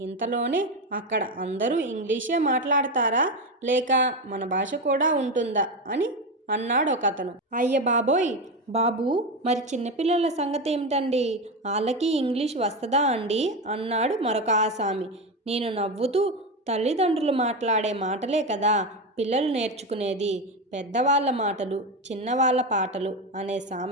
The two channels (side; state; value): both; normal; correlation 0.16